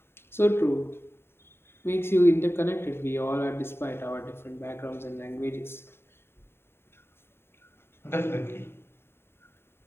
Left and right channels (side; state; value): right; late; 0.11 ms